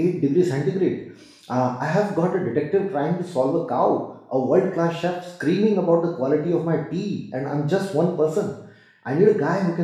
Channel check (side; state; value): both; identical; correlation 1.00